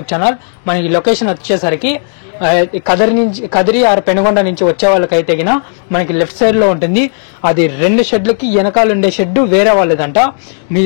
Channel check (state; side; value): silent; right; digital silence